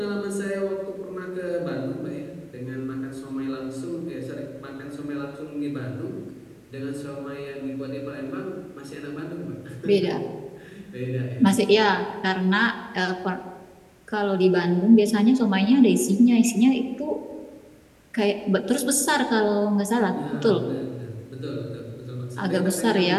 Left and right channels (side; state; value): both; identical; correlation 1.00